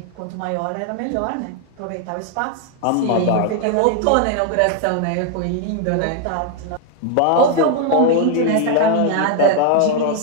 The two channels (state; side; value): different; both; correlation 0.00